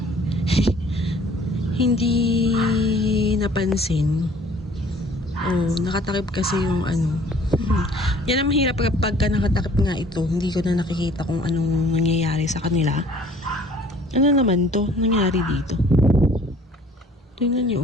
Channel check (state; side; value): normal; both; correlation 0.54